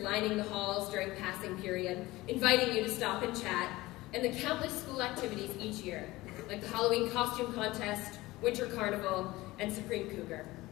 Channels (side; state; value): right; quieter; 19.2 dB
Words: the halls during passing period, inviting you to stop and chat, and the countless school activities each year, like the Halloween costume contest, Winter Carnival, and Supreme Cougar.